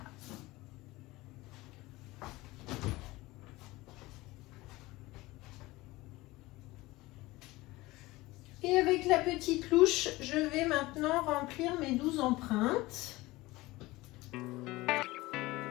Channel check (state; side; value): quieter; right; 20.0 dB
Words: Et avec la petite louche, je vais maintenant remplir mes 12 empreintes.